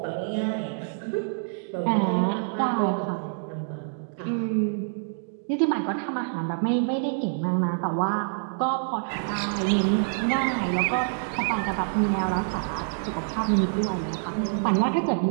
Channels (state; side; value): silent; left; digital silence